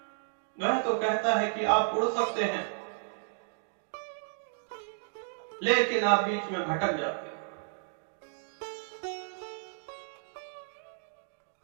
वह तो कहता है कि आप उड़ सकते हैं, लेकिन आप बीच में भटक जाते हैं।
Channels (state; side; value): silent; left; digital silence